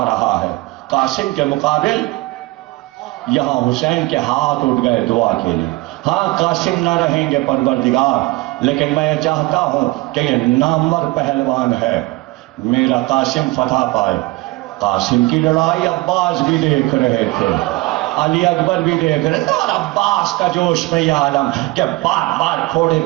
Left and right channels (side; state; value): left; quieter; 21.4 dB